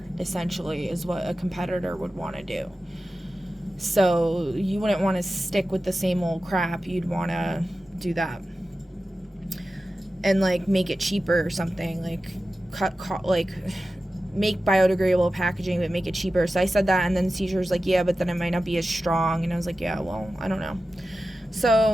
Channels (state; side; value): normal; both; correlation 0.94